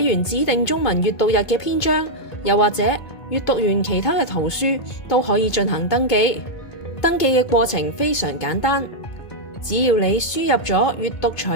完指定中文閱讀日嘅篇章，又或者閱讀完其他嘅圖書，都可以進行登記。登記嘅過程非常簡單，只要你輸入咗閱讀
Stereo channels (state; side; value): late; right; 2.2 ms